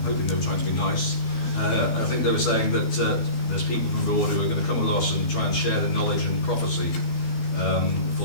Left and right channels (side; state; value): right; late; 12 ms